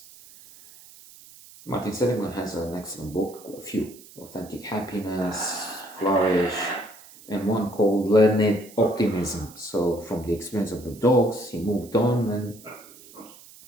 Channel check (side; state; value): right; noise; hiss, 21 dB below the sound